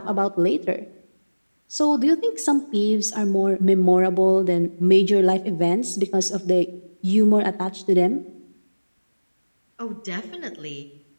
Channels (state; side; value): inverted; both; correlation -1.00